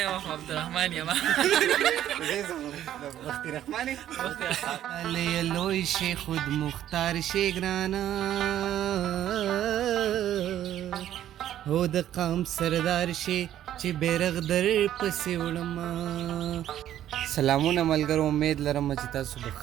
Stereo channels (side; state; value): left; quieter; 11.7 dB